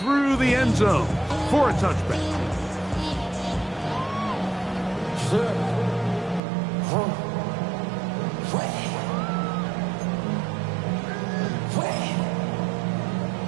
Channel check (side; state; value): left; drops out; at 6.4 s